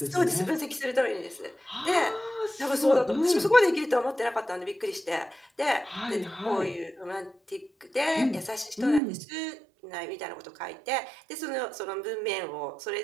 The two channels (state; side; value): drops out; left; at 9.0 s